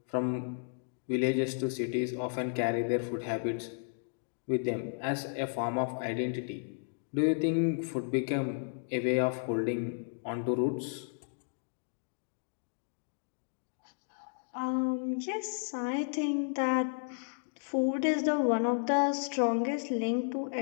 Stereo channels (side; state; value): right; silent; digital silence